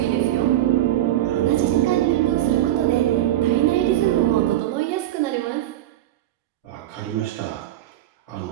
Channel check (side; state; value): left; quieter; 13.8 dB